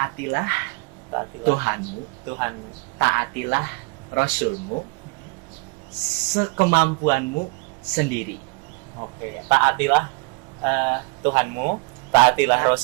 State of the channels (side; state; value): left; quieter; 29.0 dB